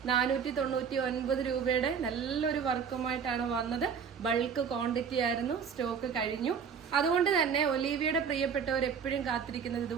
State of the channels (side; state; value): left; quieter; 6.8 dB